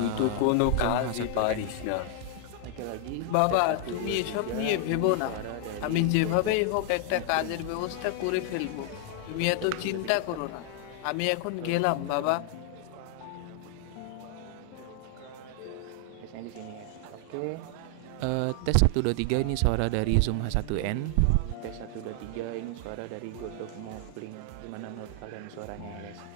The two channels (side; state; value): both; different; correlation 0.00